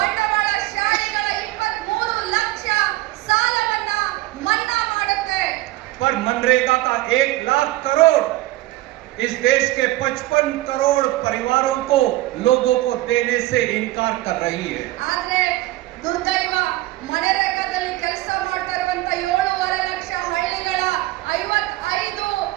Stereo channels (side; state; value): left; quieter; 17.7 dB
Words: 23 ಲಕ್ಷ ಸಾಲವನ್ನ ಮನ್ನಾ ಮಾಡುತ್ತೆ. पर मनरेगा का 1 लाख करोड़ इस देश के 55 करोड़ परिवारों को लोगों को देने से इनकार कर रही है। ಆದ್ರೆ ದುರ್ದೈವ ಮನರೇಗಾದಲ್ಲಿ ಕೆಲಸ ಮಾಡ್ತಾ ಇರುವಂತ 7.5 ಲಕ್ಷ ಹಳ್ಳಿಗಳ 55